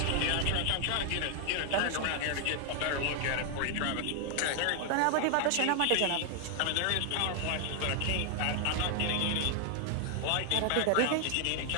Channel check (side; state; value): both; different; correlation 0.00